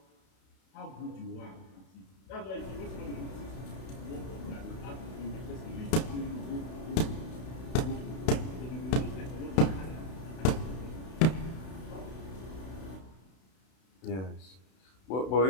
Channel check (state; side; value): late; right; 32 ms